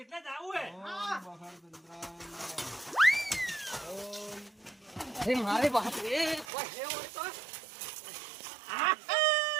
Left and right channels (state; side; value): drops out; left; at 6.5 s